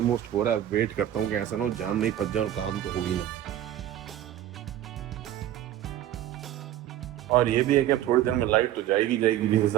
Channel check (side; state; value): left; quieter; 12.2 dB